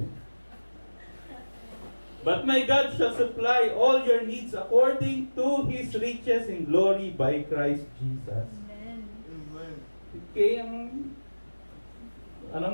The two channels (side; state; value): both; inverted; correlation -1.00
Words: But my God shall supply all your needs according to His riches in glory by Christ Jesus. Amen. Okay,